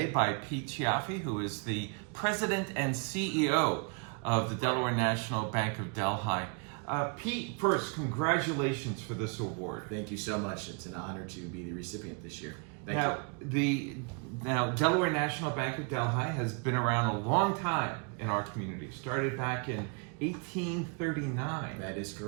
by Pete Chiaffi, who is the President and CEO of the Delaware National Bank of Delhi. Pete, first, congratulations for this award. Thank you so much. It's an honor to be the recipient this year. Thank you. Now, Delaware National Bank of Delhi has been around a long time in our community. Started back in 1839. That is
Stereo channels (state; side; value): quieter; left; 36.4 dB